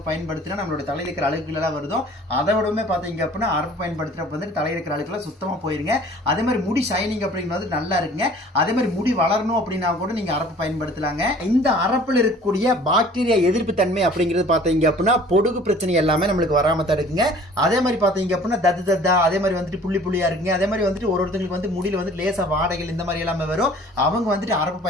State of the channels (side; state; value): both; normal; correlation 0.50